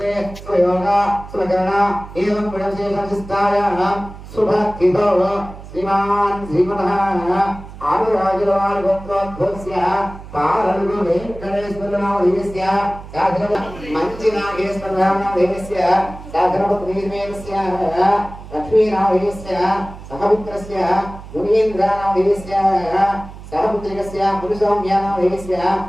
स्वयोगा स्वकरणा एवं गुणविशेषविस्तारः शुभस्थितो श्रीमान् श्रीमतः आदिराजवारगोत्रोद्भवस्य पारलुगु वेङ्कटेश्वरनामधेयस्य मञ्चिनागेश्वरनामधेयस्य साधनपत्नीमेनस्य लक्ष्मीनामधेयस्य सहपुत्रस्य मुनीन्द्रनामधेयस्य सहपुत्रिकस्य मुनिसौम्यानामधेयस्य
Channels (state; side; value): noise; right; hum, 15 dB below the sound